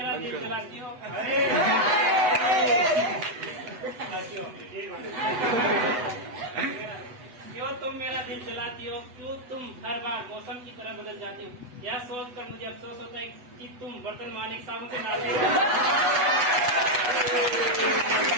दिल जलाती हो? क्यों तुम मेरा दिल जलाती हो? क्यों तुम हर बार मौसम की तरह बदल जाती हो? यह सोच कर मुझे अफसोस होता है कि तुम बर्तन मारने के साबुन से डालते हो।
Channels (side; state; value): left; late; 8.1 ms